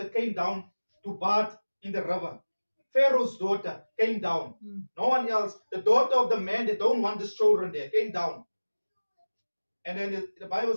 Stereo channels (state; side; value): inverted; both; correlation -1.00